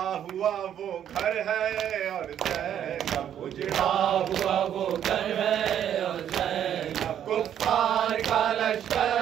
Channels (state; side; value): quieter; left; 9.9 dB